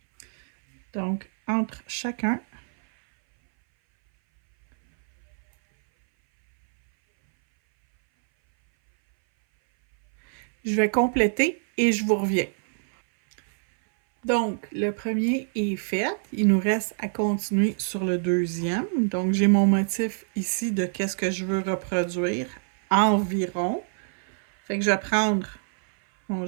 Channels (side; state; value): left; silent; 59 dB below the other